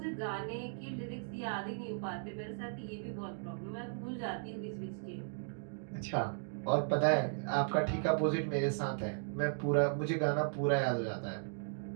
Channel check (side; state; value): left; silent; digital silence